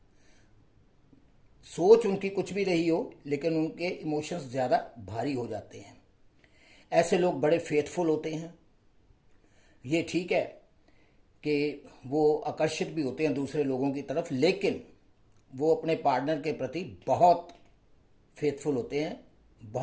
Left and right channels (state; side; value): identical; both; correlation 1.00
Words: सोच उनकी कुछ भी रही हो, लेकिन उनके इमोशंस ज़्यादा भारी हो जाते हैं। ऐसे लोग बड़े फेथफुल होते हैं। ये ठीक है कि वो आकर्षित भी होते हैं दूसरे लोगों की तरफ, लेकिन वो अपने पार्टनर के प्रति बहुत फेथफुल होते हैं,